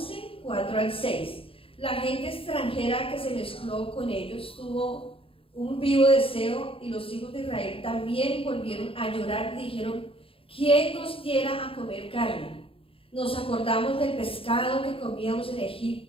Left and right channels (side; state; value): right; late; 0.27 ms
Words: 4 al 6. La gente extranjera que se mezcló con ellos tuvo un vivo deseo, y los hijos de Israel también volvieron a llorar y dijeron: ¿quién nos diera a comer carne? Nos acordamos del pescado que comíamos en